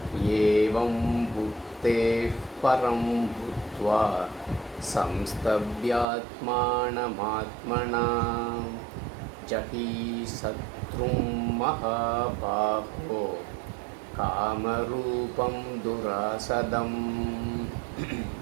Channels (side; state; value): left; drops out; at 6.1 s